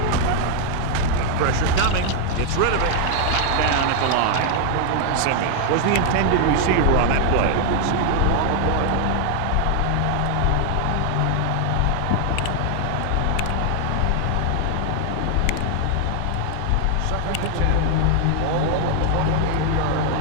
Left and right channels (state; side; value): different; both; correlation 0.00